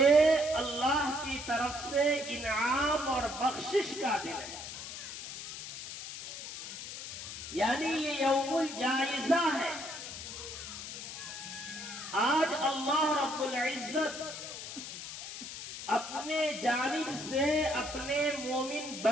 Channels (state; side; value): noise; left; hiss, 9 dB below the sound